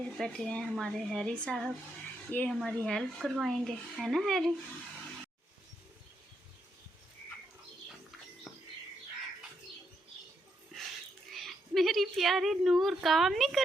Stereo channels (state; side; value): normal; both; correlation 0.79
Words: बैठे हैं हमारे हैरी साहब, ये हमारी हेल्प करवाएंगे, है ना हैरी? मेरी प्यारी नूर काम नहीं